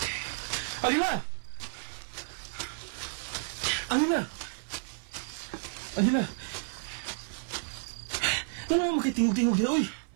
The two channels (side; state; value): left; silent; digital silence